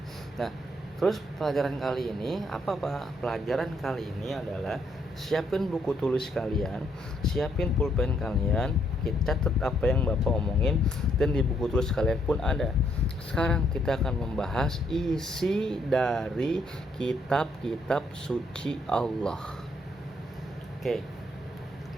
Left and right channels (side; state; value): both; normal; correlation 0.72